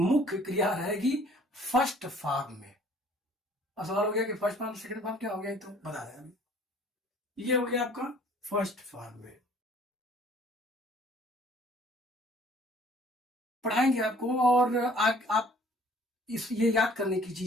क्रिया रहेगी फर्स्ट फॉर्म में। अब सवाल हो गया कि फर्स्ट फॉर्म सेकंड फॉर्म क्या हो गया, तो बता रहे हैं अभी। ये हो गया आपका फर्स्ट फॉर्म में। पढ़ाएंगे आपको, और आप ये याद करने की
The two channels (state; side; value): normal; both; correlation 0.55